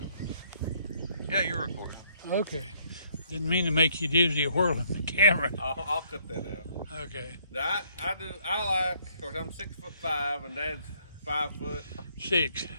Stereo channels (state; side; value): inverted; both; correlation -0.67